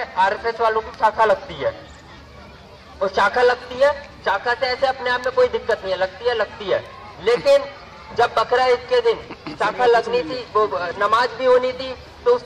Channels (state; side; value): identical; both; correlation 1.00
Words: RSS वालों की शाखा लगती है, और शाखा लगती है, शाखा से ऐसे अपने आप में कोई दिक्कत नहीं है, लगती है। लेकिन जब बकरा ईद के दिन शाखा लगनी थी, वो नमाज भी होनी थी, तो